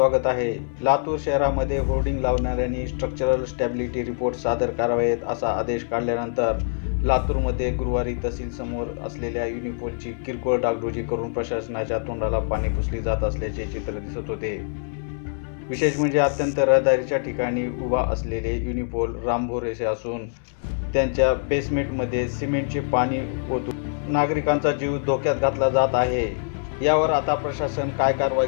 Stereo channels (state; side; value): silent; right; 62 dB below the other